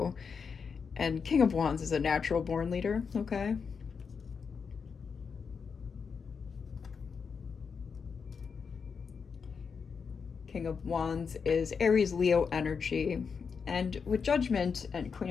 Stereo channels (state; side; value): quieter; right; 5.8 dB